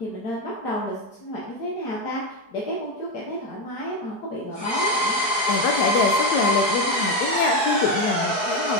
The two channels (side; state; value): right; late; 4.7 ms